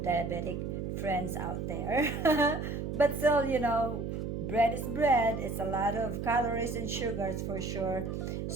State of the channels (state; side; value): noise; right; hum, 4 dB below the sound